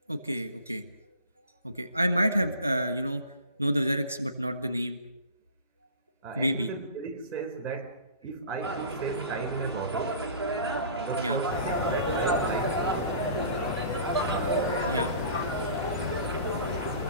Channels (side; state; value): both; inverted; correlation -0.43